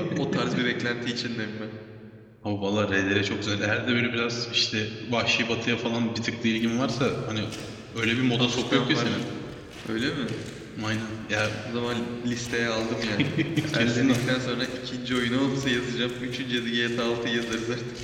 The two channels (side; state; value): both; identical; correlation 1.00